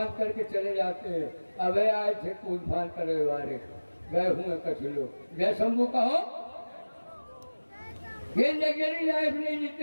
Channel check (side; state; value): both; inverted; correlation -1.00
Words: करके चले जाते हैं। अब आए थे फूल फान करने वाले, गए हुए कुछ लोग, जय शंभू कहो। ये लग्जरी लाइफ नहीं